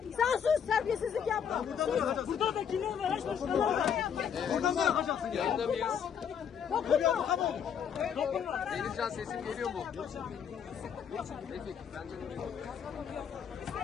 Sen sus, terbiyesizlik yapma. Burada da kimler var? Haç başkanlar var. Buradan mı yapacaksın? Yanında mıyız? Dokunma. Denizcan sesim geliyor mu? Peki, bence de geliyor.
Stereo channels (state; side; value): quieter; right; 7.8 dB